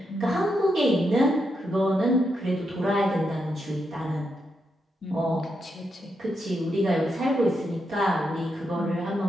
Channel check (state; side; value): normal; both; correlation 0.83